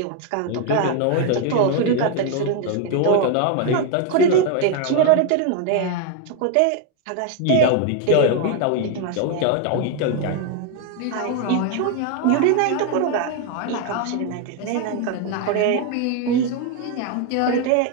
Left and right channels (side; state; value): both; different; correlation 0.01